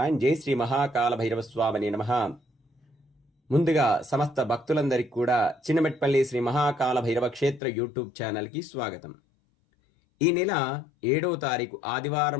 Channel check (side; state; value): right; drops out; at 7.6 s